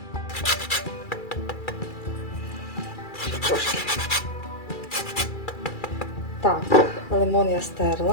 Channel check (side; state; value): right; late; 2.3 ms